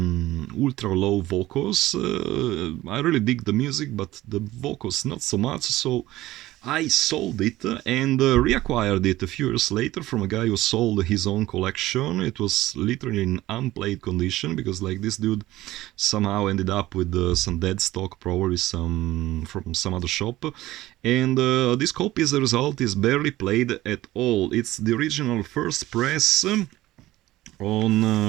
ultra low vocals. I really dig the music, but the vocals not so much, so I sold it and reacquired it a few years later from a guy who sold his own collection. It was literally in unplayed condition because, like, this dude somehow ended up with some dead stock, probably from some other shop. And this copy, as a result, is barely played at all. It's the original first press. On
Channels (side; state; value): left; quieter; 16.4 dB